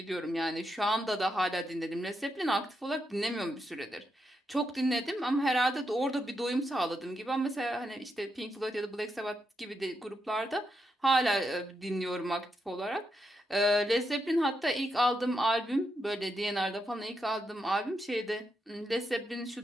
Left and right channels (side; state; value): both; normal; correlation 0.83